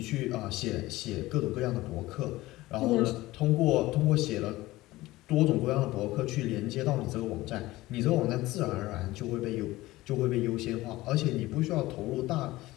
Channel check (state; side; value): quieter; right; 18.2 dB